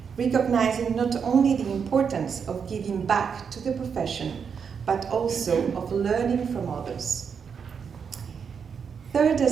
recognizing not only the importance of giving back to the profession, but also of learning from others. Third,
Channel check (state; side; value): quieter; left; 6.6 dB